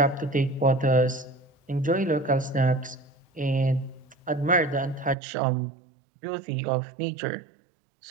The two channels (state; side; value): drops out; left; at 5.2 s